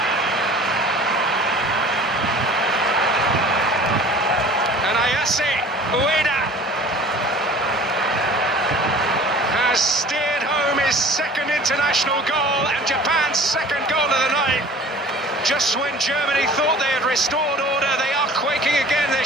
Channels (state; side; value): normal; both; correlation 0.45